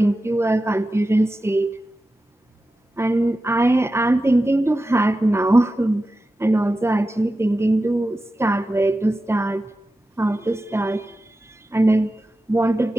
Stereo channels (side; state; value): both; normal; correlation 0.93